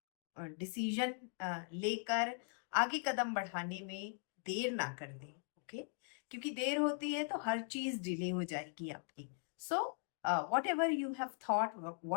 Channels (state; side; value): silent; right; 51 dB below the other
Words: डिसीजन लेकर आगे कदम बढ़ाने में देर ना कर दें, ओके? क्योंकि देर होती है तो हर चीज डिले हो जाएगी आपकी। So whatever you have thought,